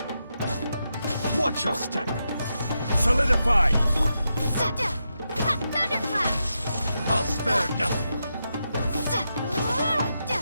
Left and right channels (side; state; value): both; inverted; correlation -0.86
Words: Watch your step. Solidify. Thunderclap! I'll spare nothing.